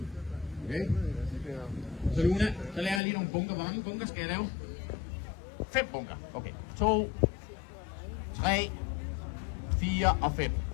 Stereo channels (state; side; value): drops out; right; at 3.0 s